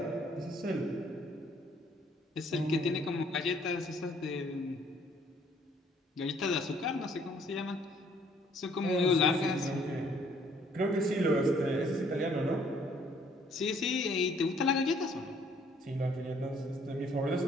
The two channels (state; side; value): normal; both; correlation 0.62